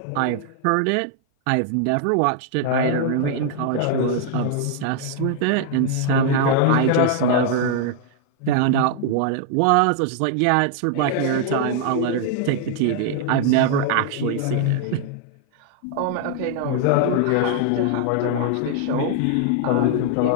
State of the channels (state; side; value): different; both; correlation 0.00